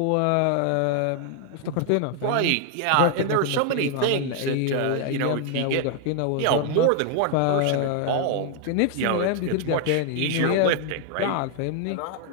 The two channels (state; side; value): different; both; correlation 0.00